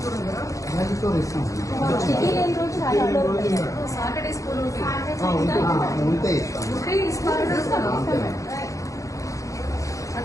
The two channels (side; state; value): right; late; 0.16 ms